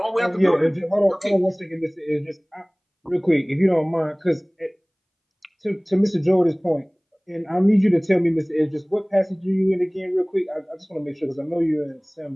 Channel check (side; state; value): both; identical; correlation 1.00